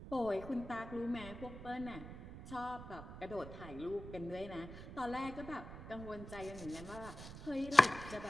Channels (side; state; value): right; noise; rumble, 12 dB below the sound